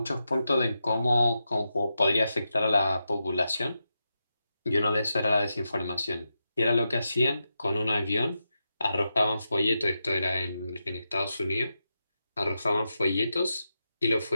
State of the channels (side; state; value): both; inverted; correlation -0.88